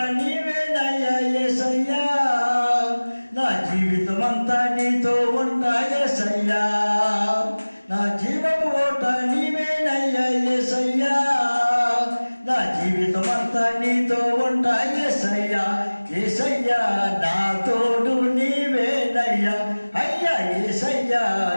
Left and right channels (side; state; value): both; inverted; correlation -1.00